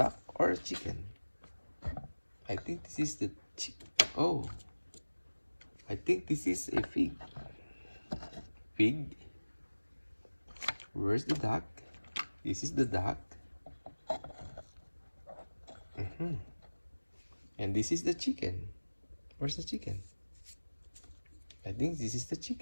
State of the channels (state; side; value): inverted; both; correlation -1.00